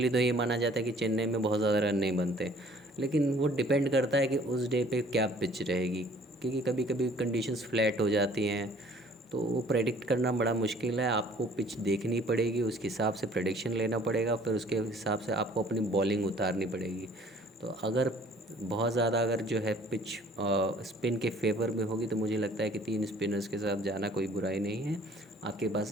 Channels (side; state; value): both; normal; correlation 0.55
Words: तो ये माना जाता है कि चेन्नई में बहुत ज़्यादा रन नहीं बनते, लेकिन वो डिपेंड करता है कि उस डे पे क्या पिच रहेगी, क्योंकि कभी कभी कंडीशंस फ्लैट हो जाती हैं। तो वो प्रेडिक्ट करना बड़ा मुश्किल है, आपको पिच देखनी पड़ेगी, उसके हिसाब से प्रेडिक्शन लेना पड़ेगा, फिर उसके हिसाब से आपको अपनी बॉलिंग उतारनी पड़ेगी। तो अगर बहुत ज़्यादा अगर जो है पिच स्पिन के फेवर में होगी, तो मुझे लगता है कि 3 स्पिनर्स के साथ जाना कोई बुराई नहीं है। आपके